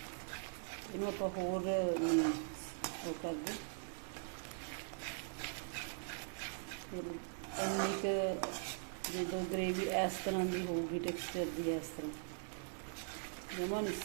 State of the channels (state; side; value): silent; left; 50 dB below the other